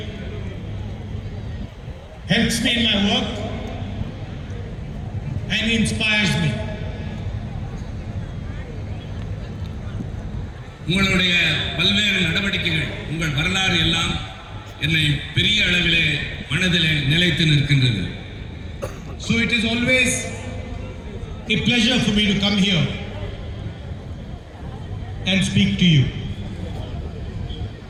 helps me in my work and inspires me. உங்களுடைய பல்வேறு நடவடிக்கைகள், உங்கள் வரலாறு எல்லாம் என்னை பெரிய அளவிலே மனதிலே நிலைத்து நிற்கின்றது. So it is always a pleasure for me to come here and speak to you.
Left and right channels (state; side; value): identical; both; correlation 1.00